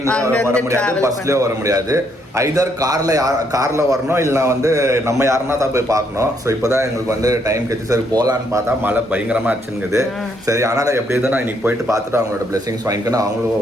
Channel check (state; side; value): normal; both; correlation 0.72